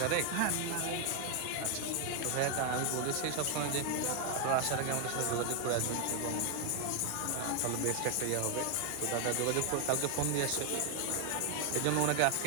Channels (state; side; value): different; both; correlation 0.01